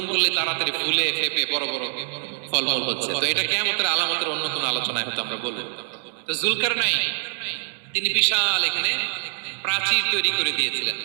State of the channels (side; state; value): left; silent; digital silence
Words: করলে তাড়াতাড়ি ফুলে ফেপে বড় বড় ফলমূল হচ্ছে। তো এটা কিয়ামতের আলামতের অন্য কোনো আলোচনায় হয়তো আমরা বলবো। তো যুলকারনাইন তিনি বিশাল এখানে প্রাচীর তৈরি করে দিয়েছিলেন,